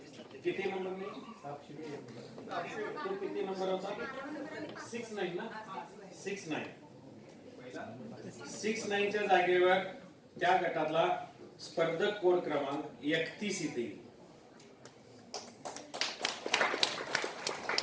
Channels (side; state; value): both; identical; correlation 1.00